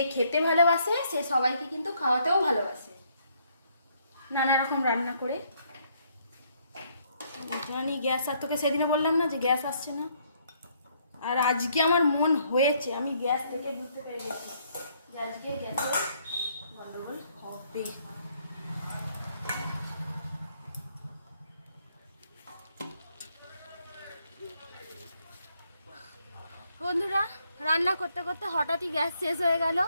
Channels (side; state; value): both; inverted; correlation -0.69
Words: খেতে ভালোবাসে সে সবাইকে কিন্তু খাওয়াতেও ভালোবাসে, নানা রকম রান্না করে। জানি গ্যাস, আর তোকে সেদিনে বললাম না যে গ্যাস আসছে না, আর আজকে আমার মন হয়েছে, আমি গ্যাস থেকে বুঝতে পেরে গেছি যে আজকে গ্যাসের গন্ডগোল হবে। বন্ধুরা, রান্না করতে করতে হঠাৎই গ্যাস শেষ হয়ে গেল,